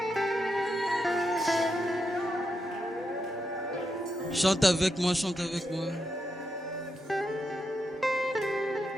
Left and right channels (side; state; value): both; normal; correlation 0.84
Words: Chante avec moi, chante avec moi.